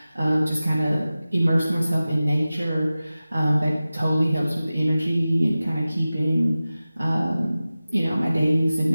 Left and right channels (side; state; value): both; inverted; correlation -0.96